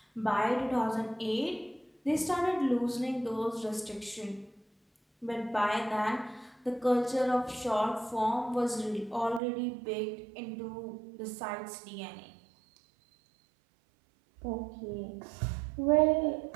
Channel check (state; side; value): drops out; left; at 9.4 s